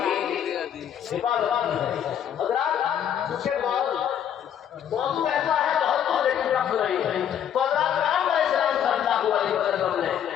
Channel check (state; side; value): quieter; right; 9.4 dB